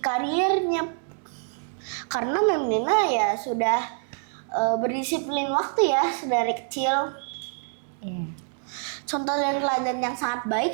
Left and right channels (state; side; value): silent; left; 61 dB below the other